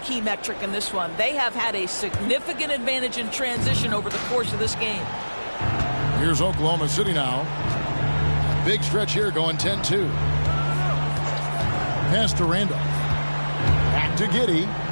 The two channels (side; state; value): both; inverted; correlation -1.00